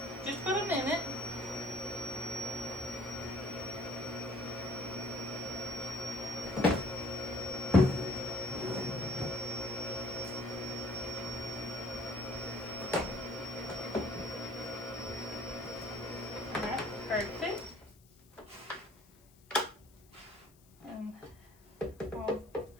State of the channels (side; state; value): left; noise; hiss, 28 dB below the sound